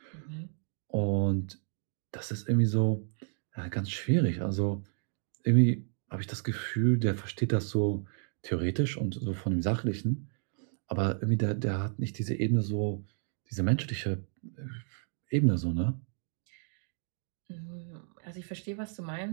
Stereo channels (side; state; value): left; silent; 57 dB below the other